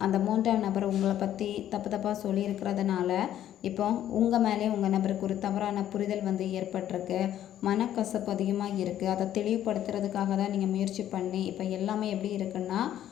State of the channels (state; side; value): quieter; right; 11.5 dB